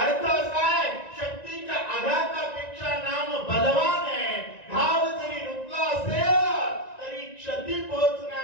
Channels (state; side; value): late; right; 1.9 ms